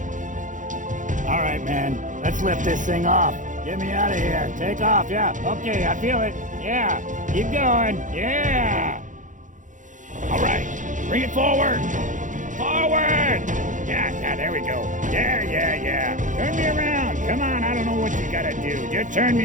All right, man, let's lift this thing off. Get me out of here. Take off, yeah. Okay, I feel it. Yeah, keep going. Yeah. All right, bring it forward. Forward. Yeah, there we go. Yeah. Turn me around. Come on, I don't know what you gotta do. Just turn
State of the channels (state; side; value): late; left; 0.37 ms